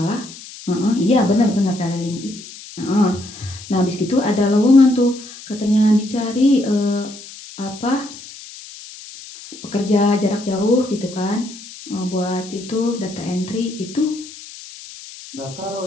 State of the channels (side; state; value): left; noise; hiss, 16 dB below the sound